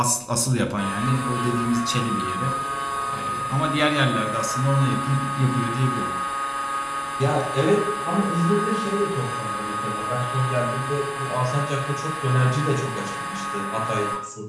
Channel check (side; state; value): both; identical; correlation 1.00